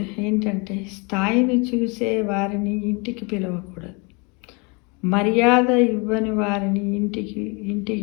ఏంటంటే స్థాయిని చూసే వారిని ఇంటికి పిలవకూడదు. మర్యాద ఇవ్వని వారిని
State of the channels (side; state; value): right; quieter; 30.3 dB